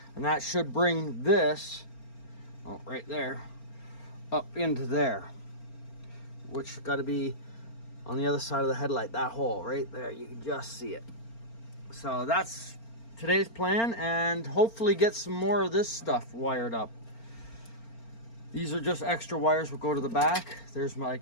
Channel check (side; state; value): right; late; 4.4 ms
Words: and that should bring this, oh, right there, up into there, which got to be on the other side of the headlight. That hole right there, you can just see it. So that's today's plan, and hopefully get some more of this stuff wired up. These are just extra wires will go to the back. There's